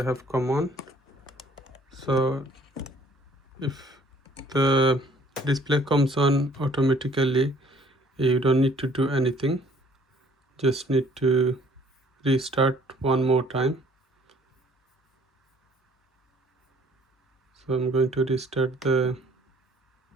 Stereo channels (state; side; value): normal; both; correlation 0.58